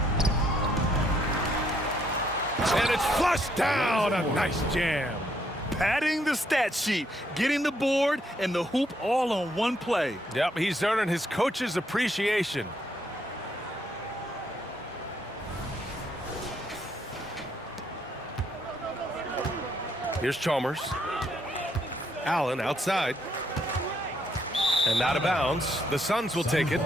And it's flushed down. A nice jam. Padding the stat sheet, getting the board and the hoop all on one play. Yep, he's earning his coach's appreciation. Here's Chalmers. Allen outside. And out of bounds. The Suns will take it.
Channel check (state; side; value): normal; both; correlation 0.72